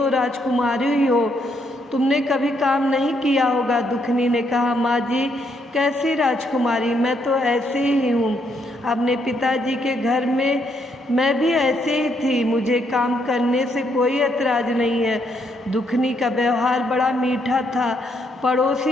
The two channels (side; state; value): both; normal; correlation 0.74